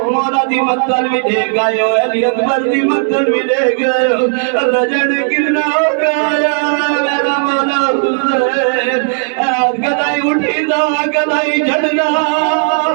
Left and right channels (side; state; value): left; silent; 62 dB below the other